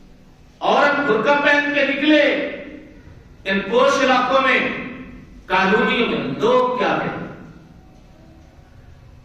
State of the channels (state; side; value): identical; both; correlation 1.00